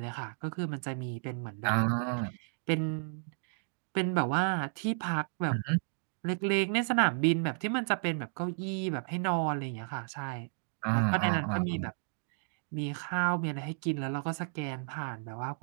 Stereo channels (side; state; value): left; silent; digital silence